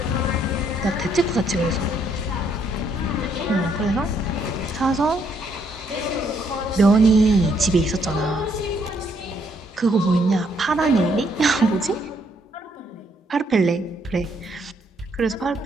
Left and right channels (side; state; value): both; normal; correlation 0.71